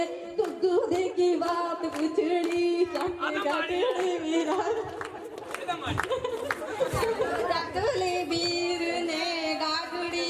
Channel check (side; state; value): both; identical; correlation 1.00